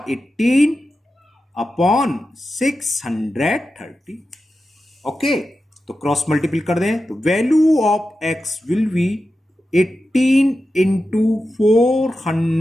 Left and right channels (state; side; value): normal; both; correlation 0.91